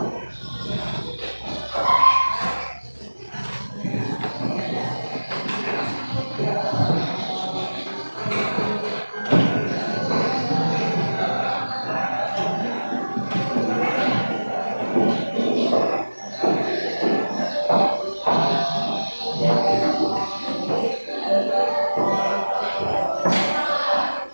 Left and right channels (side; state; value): both; inverted; correlation -1.00